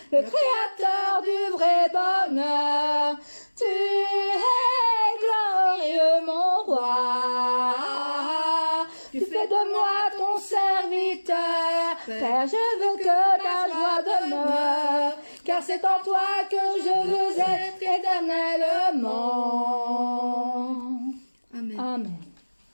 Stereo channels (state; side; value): inverted; both; correlation -1.00